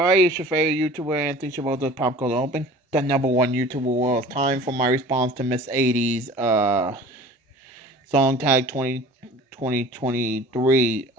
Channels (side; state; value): both; normal; correlation 0.43